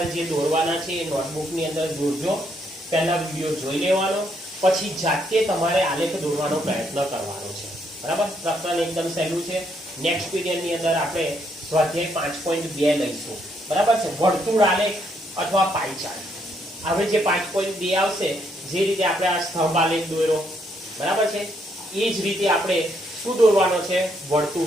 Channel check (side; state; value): both; normal; correlation 0.74